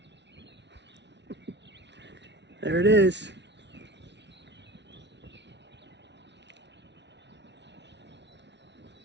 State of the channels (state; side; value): late; left; 0.51 ms